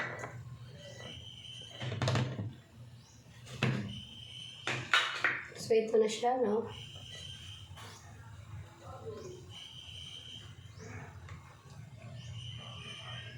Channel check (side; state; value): both; identical; correlation 1.00